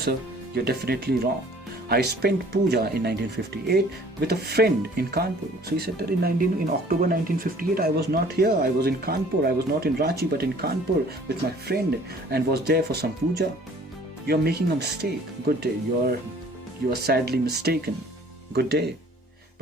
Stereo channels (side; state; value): both; normal; correlation 0.53